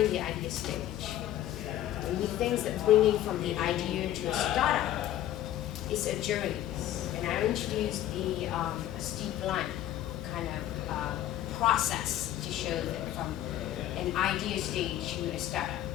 the idea stage. And we think that bringing from the idea to a startup is a journey. And I introduced a steep line kind of process to show that from an idea stage to a startup.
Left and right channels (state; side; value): quieter; right; 12.7 dB